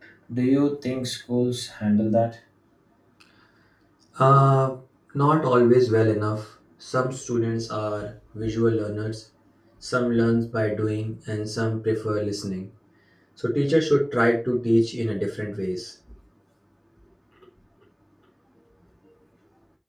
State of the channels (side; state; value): both; identical; correlation 1.00